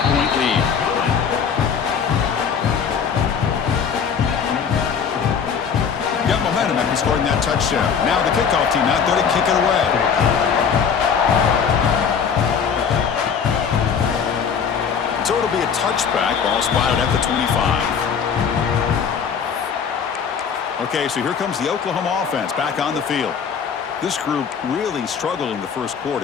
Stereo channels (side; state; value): right; quieter; 6.8 dB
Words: lead. Got momentum after scoring that touchdown. Now the kickoff team out there to kick it away. So it'll be a touchback. Ball spotted at the 25. Okay, so here comes the Oklahoma offense back on the field. This group really struggled in the first